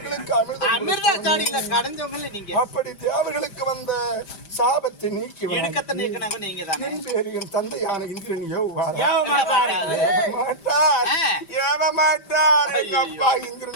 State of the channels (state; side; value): late; right; 5.1 ms